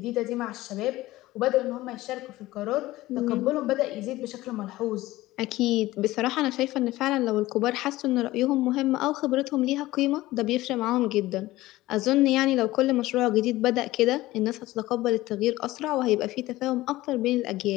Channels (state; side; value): quieter; right; 17.4 dB